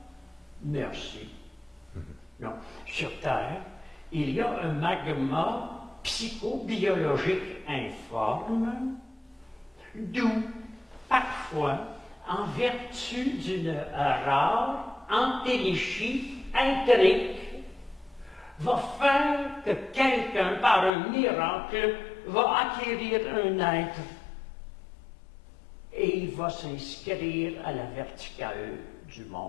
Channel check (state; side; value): drops out; right; at 20.9 s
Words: Merci. Non. Sur Terre, il y a un magma psychobiologique informe, d'où, parfois, en vertu d'une rare entéléchie intrigue, va faire que quelqu'un, par un miracle, va acquérir un être et il va s'inscrire à la verticale du